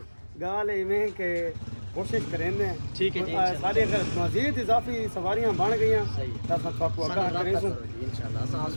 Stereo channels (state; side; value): inverted; both; correlation -1.00